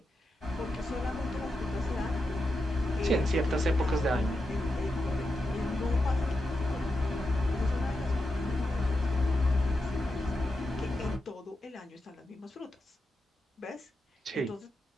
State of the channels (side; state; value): both; normal; correlation 0.88